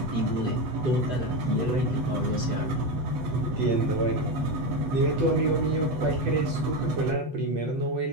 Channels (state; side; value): late; left; 8.1 ms